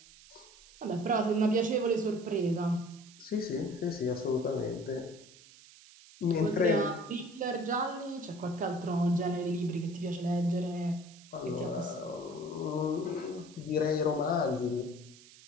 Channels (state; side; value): noise; right; hiss, 22 dB below the sound